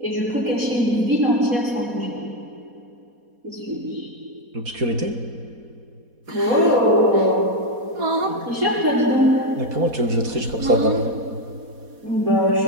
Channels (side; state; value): left; late; 4.2 ms